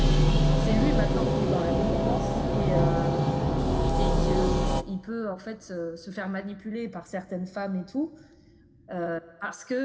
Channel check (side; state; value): both; identical; correlation 1.00